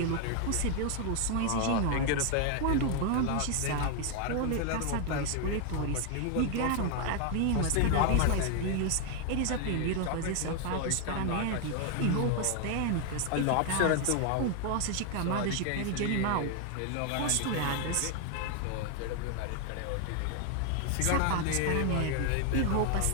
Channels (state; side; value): different; both; correlation 0.00